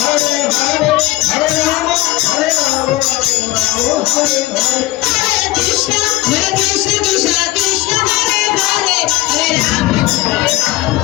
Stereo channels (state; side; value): quieter; right; 18.1 dB